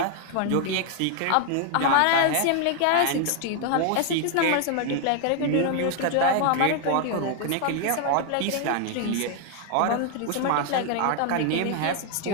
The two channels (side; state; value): both; different; correlation 0.00